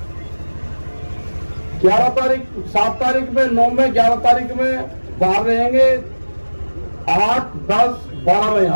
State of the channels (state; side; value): inverted; both; correlation -1.00